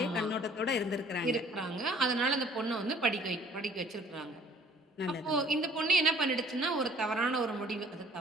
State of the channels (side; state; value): both; normal; correlation 0.54